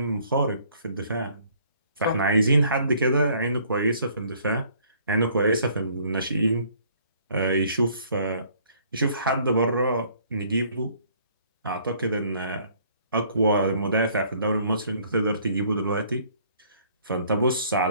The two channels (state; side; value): inverted; both; correlation -0.60